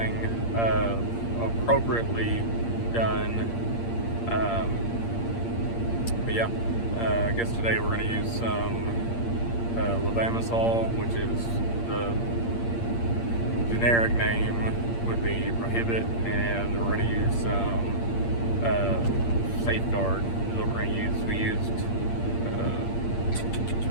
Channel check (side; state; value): right; late; 8.7 ms